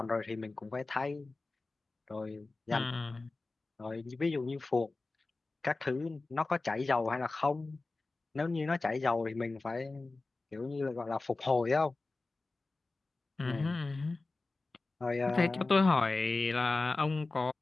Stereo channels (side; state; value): right; quieter; 3.4 dB